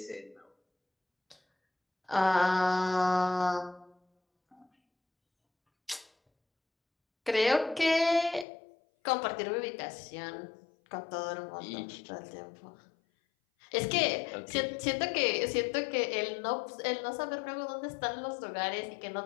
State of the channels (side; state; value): right; drops out; at 8.5 s